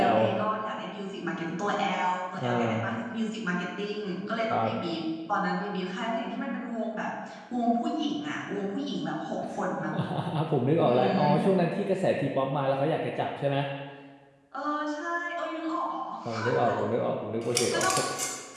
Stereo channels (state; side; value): identical; both; correlation 1.00